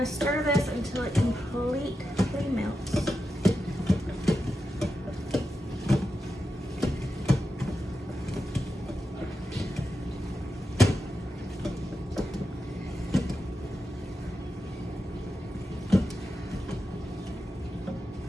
stir this until it completely melts.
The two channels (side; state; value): both; normal; correlation 0.89